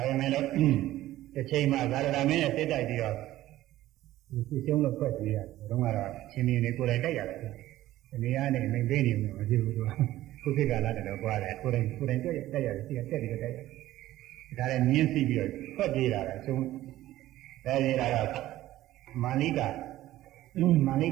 ပေမဲ့လည်းတစ်ချိန်မှာသာရဏမင်းနဲ့စိတ်တိုက်ပြီးတော့ဒီရှုံးလို့ဖွက်ပြေးရတယ်ဘုရားကတော့ရှင်နေကိုယ်တိုင်တိုက်ရတယ်ဒီနေရာနဲ့မင်းပေးနေမှာမဖြစ်ဘူးသူကခုခေတ်ကလာတယ်တော့ကြွားတယ်ကိုယ်တိုင်တိုက်ရတယ်ရှိကတက်ပြီးတော့တိုက်ရတယ်ဒါလည်းမြင်းစီပြီးတော့ဖွက်ပြေးတာလေဆုံးအဲဒီကတော့မာနိက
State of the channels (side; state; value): left; quieter; 15.0 dB